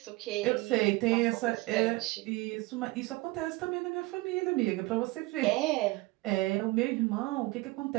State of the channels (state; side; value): quieter; left; 21.9 dB